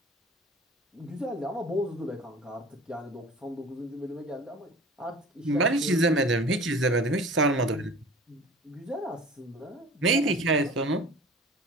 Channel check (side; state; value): both; normal; correlation 0.41